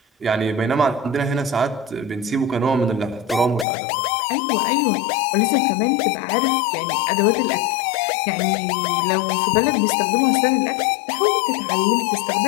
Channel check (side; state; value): right; drops out; at 3.7 s